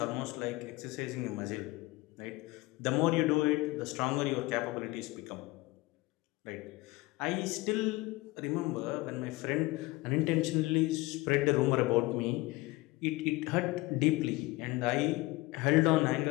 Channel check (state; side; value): quieter; right; 21.5 dB